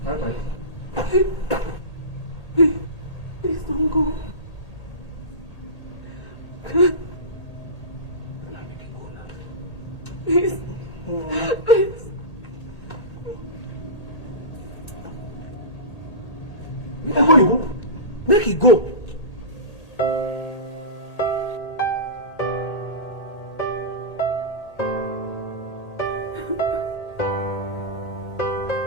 Bye-bye. Please don't go. Make it go.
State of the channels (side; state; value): right; late; 1.8 ms